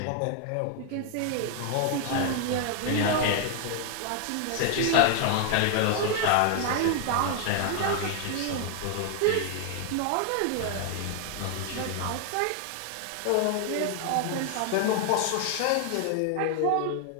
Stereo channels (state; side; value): different; both; correlation 0.00